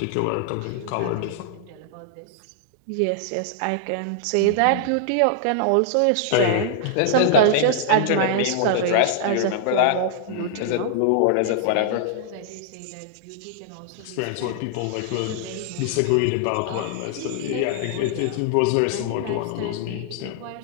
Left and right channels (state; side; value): different; both; correlation -0.01